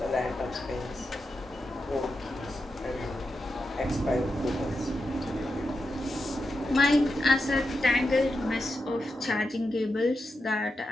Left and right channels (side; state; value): both; normal; correlation 0.88